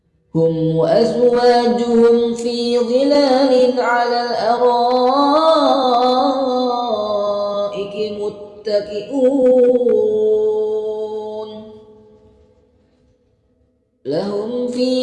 هم وأزواجهم في ظلال على الأرائك متكئون لهم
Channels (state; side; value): identical; both; correlation 1.00